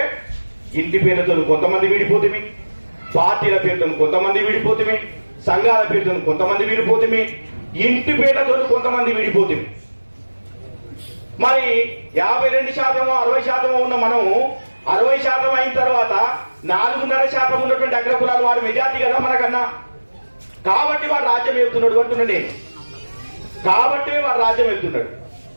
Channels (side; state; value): both; inverted; correlation -1.00